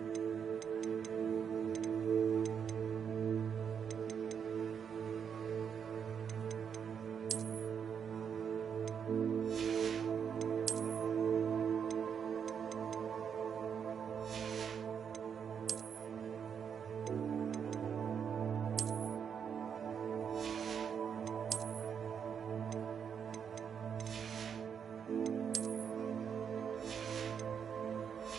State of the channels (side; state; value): left; quieter; 7.3 dB